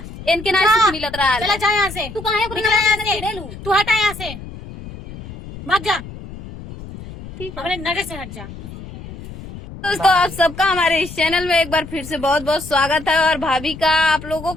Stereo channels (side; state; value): left; noise; rumble, 13 dB below the sound